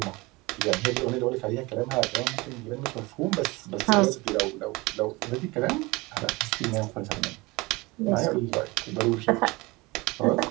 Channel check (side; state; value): left; quieter; 23.4 dB